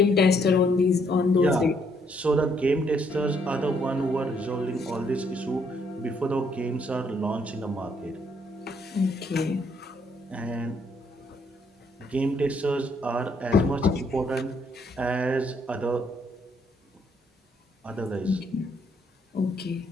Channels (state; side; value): normal; both; correlation 0.70